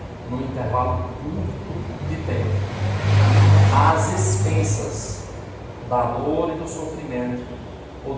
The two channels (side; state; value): both; identical; correlation 1.00